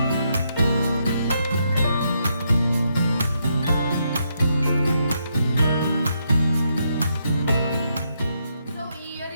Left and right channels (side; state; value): both; inverted; correlation -0.78